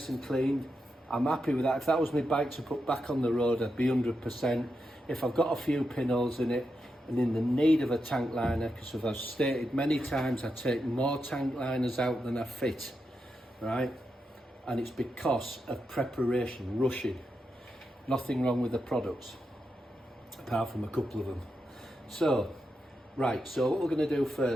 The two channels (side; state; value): both; normal; correlation 0.86